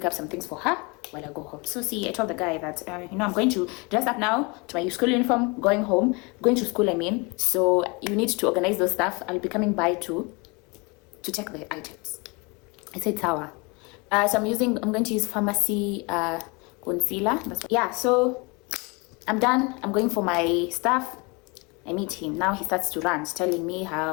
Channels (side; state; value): right; quieter; 28.6 dB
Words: up some things for her while I go home. So see, I told the guy that, I'm going to dress up now to my school uniform, going to school, So you need to organize those stuff. I'll be coming by to check the items. I said, Sawa. So I'm going to use pharmacy concealer. So I'm done. I'm going for my stuff. I meet him. Now he starts to rant, telling me